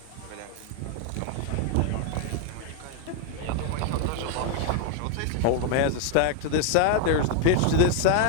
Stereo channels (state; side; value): different; both; correlation 0.00